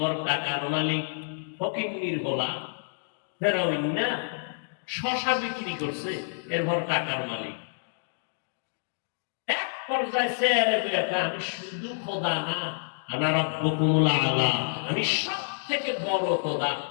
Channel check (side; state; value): right; silent; digital silence